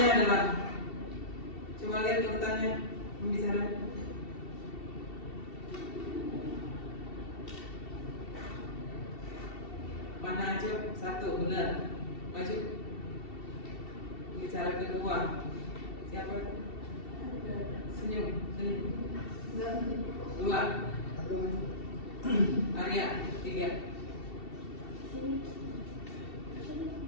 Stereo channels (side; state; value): right; late; 2.7 ms